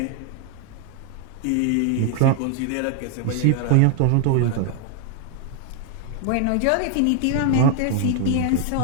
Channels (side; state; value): both; different; correlation 0.00